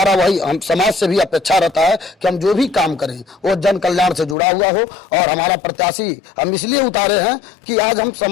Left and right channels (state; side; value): drops out; right; at 4.4 s